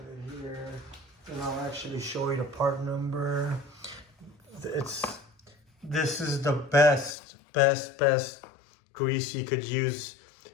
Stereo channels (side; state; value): right; drops out; at 7.2 s